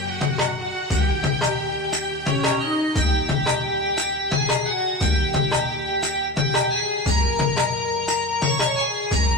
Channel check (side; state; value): both; normal; correlation 0.34